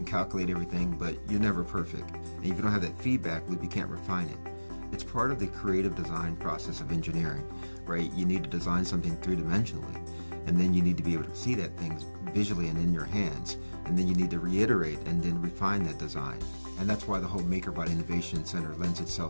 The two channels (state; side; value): inverted; both; correlation -1.00